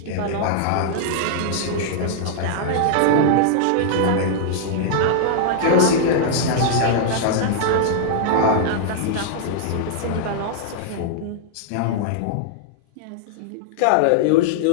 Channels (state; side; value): different; both; correlation -0.01